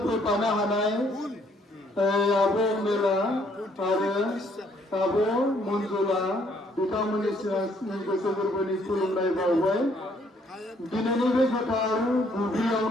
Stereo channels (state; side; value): normal; both; correlation 0.66